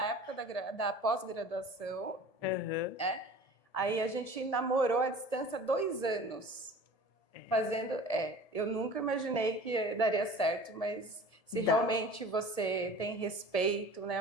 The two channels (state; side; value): late; right; 1.7 ms